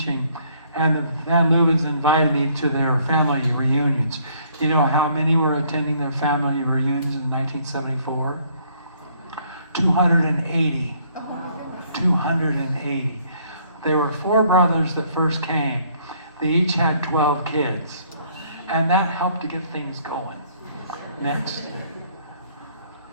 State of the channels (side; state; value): both; inverted; correlation -0.64